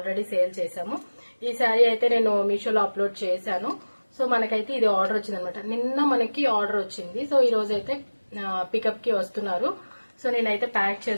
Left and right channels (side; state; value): both; inverted; correlation -1.00